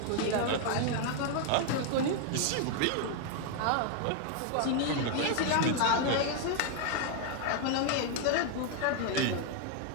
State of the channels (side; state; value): both; different; correlation 0.01